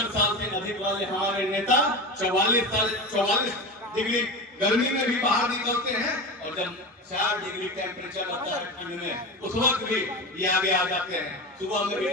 साल से अधिक वाले हमारे नेता 44 डिग्री गर्मी में भी बाहर निकलते हैं। और जब 4 डिग्री टेम्परेचर आता है ठंड में उस वक्त भी ये आगे आ जाते हैं, सुबह में भी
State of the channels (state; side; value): normal; both; correlation 0.25